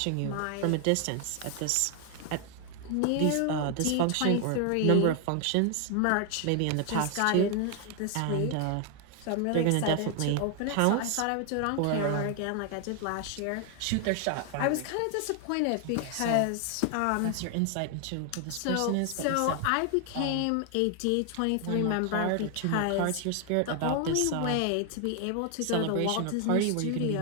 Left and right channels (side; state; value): both; different; correlation 0.00